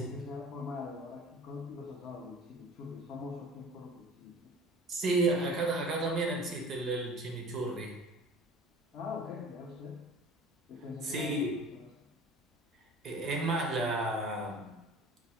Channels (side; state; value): both; normal; correlation 0.43